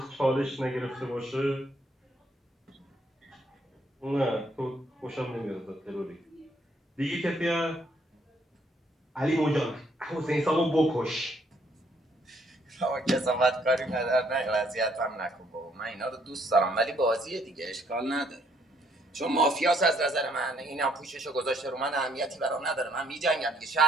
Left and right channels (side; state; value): both; normal; correlation 0.68